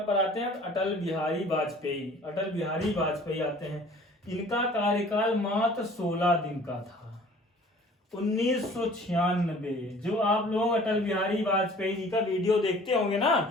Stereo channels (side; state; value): both; normal; correlation 0.50